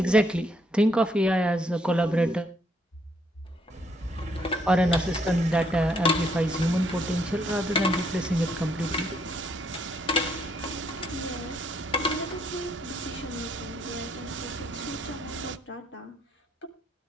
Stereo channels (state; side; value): normal; both; correlation 0.71